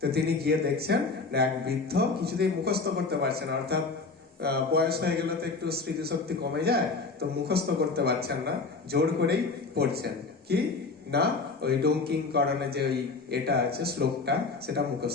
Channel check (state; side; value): quieter; right; 4.1 dB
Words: তিনি গিয়ে দেখছেন এক বৃদ্ধ কিছুতেই মুখস্থ করতে পারছেন, অর্থাৎ বয়স হয়ে গেলে তো একটু স্মৃতিশক্তি কমে যায়, তো মুখস্থ করতে পারছেন না, জোর করেই পড়ছেন কি না ওই ডঙ্কিং করণে যে ওই এটা আছে শ্লোকটা, সেটা